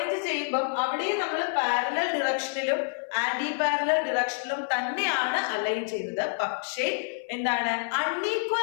ചെയ്യുമ്പോൾ അവിടെയും നമ്മൾ പാരലൽ ഡിറക്ഷനിലും ആന്റി പാരലൽ ഡിറക്ഷനിലും തന്നെയാണ് അലൈൻ ചെയ്യുന്നത്. പക്ഷേ എന്താണ്,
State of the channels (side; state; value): right; silent; 59 dB below the other